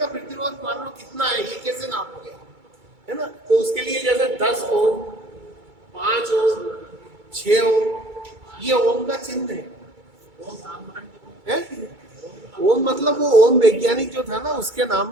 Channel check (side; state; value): left; late; 2.3 ms